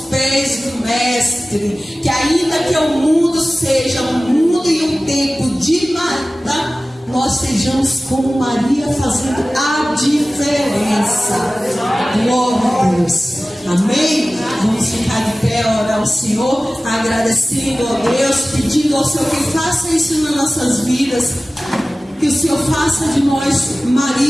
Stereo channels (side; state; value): both; normal; correlation 0.97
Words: pés do Mestre. Que ainda que o mundo seja um mundo e um tempo de Marta, nós sejamos como Maria, fazendo a diferença. Glória a Deus. Amém? Vamos ficar de pé, orar ao Senhor, agradecendo a Deus, pedindo ao Senhor que faça isso nas nossas vidas. Que o Senhor faça de nós